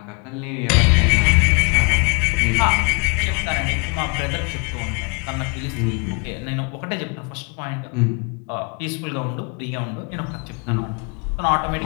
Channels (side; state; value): right; quieter; 33.1 dB